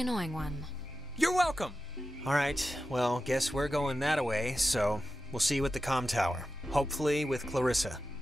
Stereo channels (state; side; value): normal; both; correlation 0.92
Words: one. You're welcome! Alright, well, guess we're going that way, so we'll see you at the comm tower. Hopefully with Clarissa.